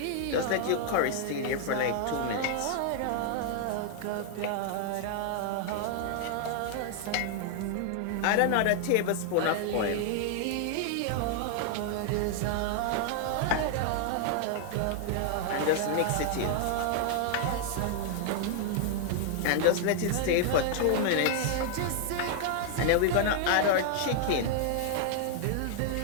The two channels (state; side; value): different; both; correlation 0.00